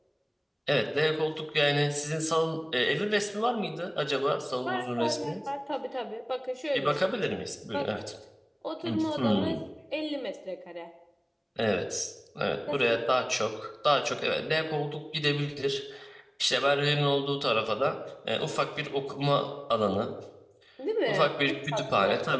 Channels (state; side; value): identical; both; correlation 1.00